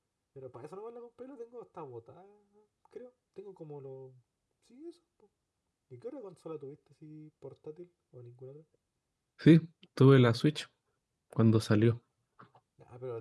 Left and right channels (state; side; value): identical; both; correlation 1.00